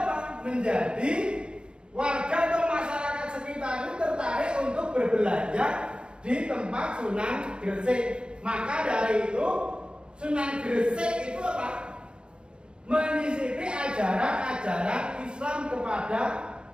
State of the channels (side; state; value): left; late; 0.052 ms